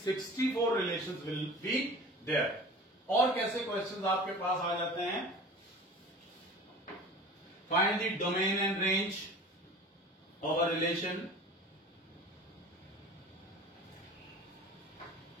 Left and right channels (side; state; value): both; normal; correlation 0.40